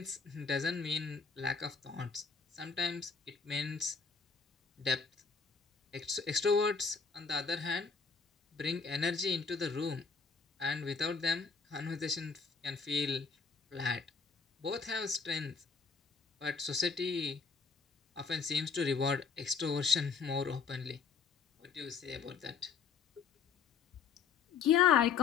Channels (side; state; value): right; quieter; 5.6 dB